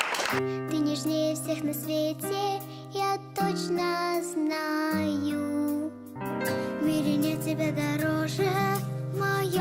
Ты нежнее всех на свете, я точно знаю. В мире нет тебя дороже, в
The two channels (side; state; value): both; identical; correlation 1.00